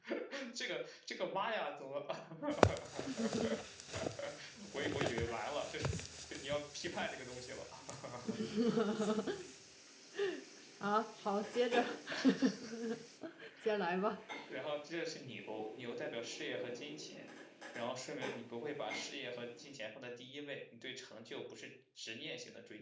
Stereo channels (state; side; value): identical; both; correlation 1.00